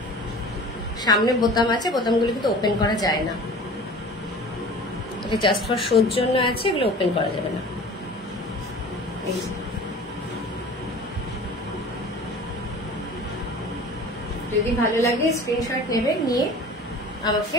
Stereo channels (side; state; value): both; normal; correlation 0.41